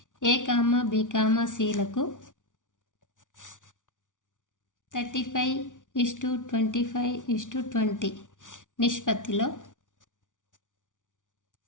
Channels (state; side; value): late; right; 0.87 ms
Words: A, B, Cలకు 35:25:20 నిష్పత్తిలో